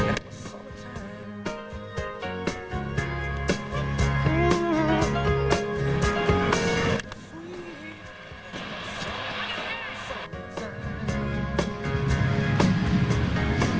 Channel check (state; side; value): identical; both; correlation 1.00